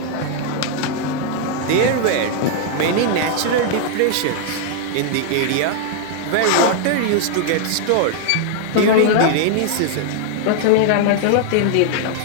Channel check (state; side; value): different; both; correlation 0.00